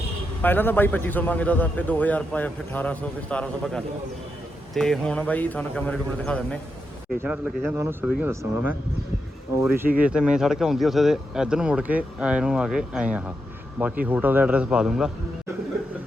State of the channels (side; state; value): both; normal; correlation 0.85